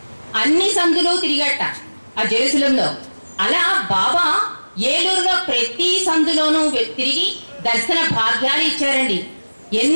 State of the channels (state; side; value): inverted; both; correlation -1.00